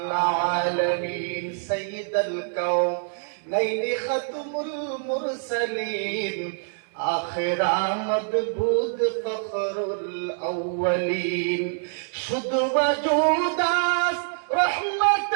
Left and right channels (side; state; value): left; silent; digital silence